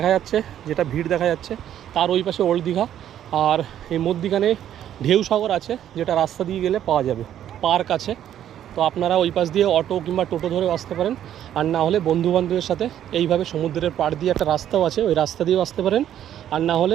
যাচ্ছে, যেটা ভিড় দেখা যাচ্ছে, তার ওই পাশে ওল্ড দীঘা। আর এই মধ্যিখানে ঢেউ সাগর আছে, যেটা রাস্তা দিয়ে গেলে পাওয়া যাবে। পার্ক আছে, তো আপনারা ওই পাশ দিয়ে অটো কিংবা টোটো ধরে আসতে পারেন। আর না হলে বন্ধুবান্ধবের সাথে এইভাবে সমুদ্রের পাড় দিয়ে একটা রাস্তাও আছে, ওই রাস্তা দিয়েও আসতে পারেন। আর না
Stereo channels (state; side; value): quieter; left; 10.8 dB